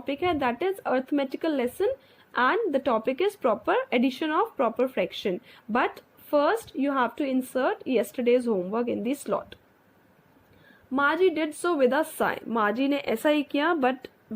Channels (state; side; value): identical; both; correlation 1.00